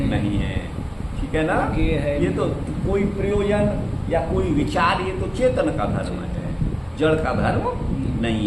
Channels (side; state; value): both; identical; correlation 1.00